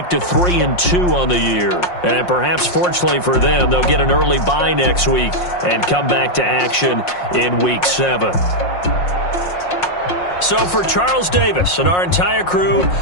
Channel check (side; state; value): right; late; 5.6 ms